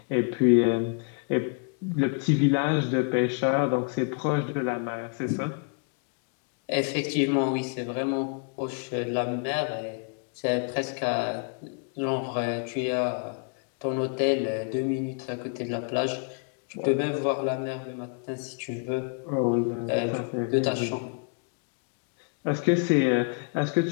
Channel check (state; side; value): quieter; right; 36.6 dB